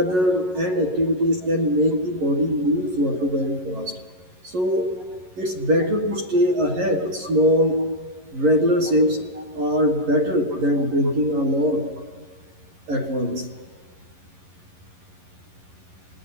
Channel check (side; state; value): left; late; 11 ms